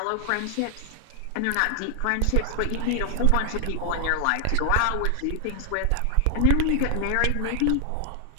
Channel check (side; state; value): both; different; correlation 0.00